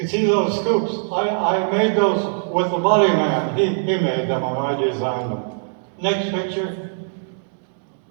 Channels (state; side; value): silent; left; digital silence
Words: see those scoops. I made those with the body man. He made them and I designed them. Next picture.